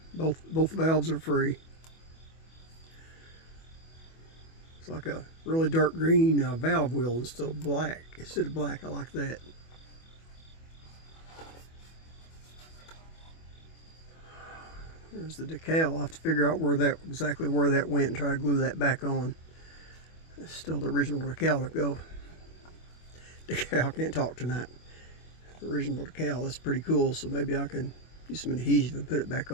Both valves are free. It's like a really dark green valve wheel instead of black. I like that. There's the decal. I'll have to figure out exactly where that went and try to glue that back on. That's still the original decal to go. Decal, can't talk tonight. The original decal, that's pretty cool. So maybe I can use some adhesive and put it back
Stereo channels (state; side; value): late; right; 25 ms